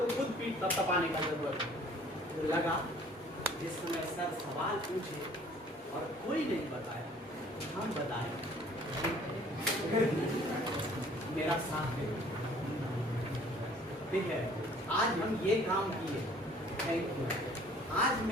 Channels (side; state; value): both; normal; correlation 0.54